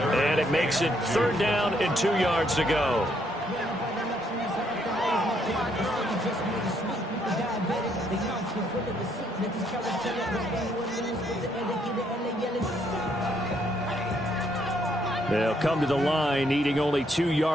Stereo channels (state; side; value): normal; both; correlation 0.71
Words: it makes it 3rd down and 2 yards to go. They'll come to the line, needing only 2